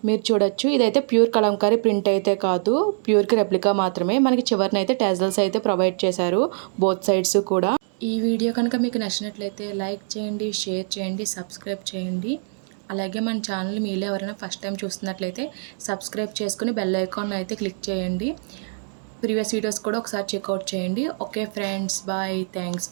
మీరు చూడొచ్చు, ఇదైతే ప్యూర్ కలంకారీ ప్రింట్ అయితే కాదు, ప్యూర్కి రెప్లికా మాత్రమే. మనకి చివరినైతే టెజల్స్ అయితే ప్రొవైడ్ చేశారు బోత్ సైడ్స్ కూడా. ఈ వీడియో కనుక మీకు నచ్చినట్లయితే లైక్ చేయండి, షేర్ చేయండి, సబ్స్క్రైబ్ చేయండి. అలాగే మన ఛానల్ మీలో ఎవరైనా ఫస్ట్ టైం చూస్తున్నట్లయితే సబ్స్క్రైబ్ చేసుకుని బెల్ ఐకాన్ అయితే క్లిక్ చేయండి. ప్రీవియస్ వీడియోస్ కూడా ఒకసారి చెక్అవుట్ చేయండి. Okay friends, bye, thanks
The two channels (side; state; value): left; silent; digital silence